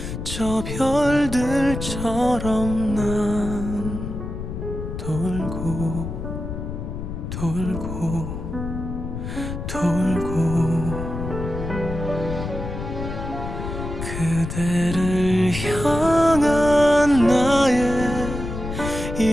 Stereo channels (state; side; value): noise; left; rumble, 6 dB below the sound